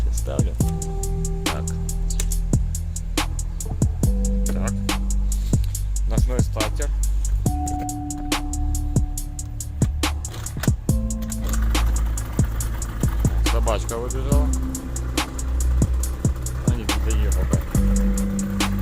ставлю. Так. Ночной стартер. Собачка выбежала. А не доехал, да.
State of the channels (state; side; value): identical; both; correlation 1.00